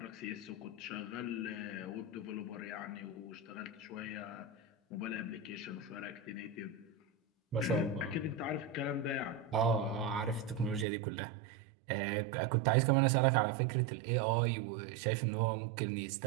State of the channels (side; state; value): left; drops out; at 10.9 s